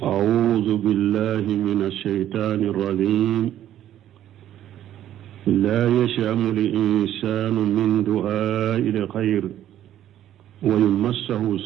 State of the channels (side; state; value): left; quieter; 11.8 dB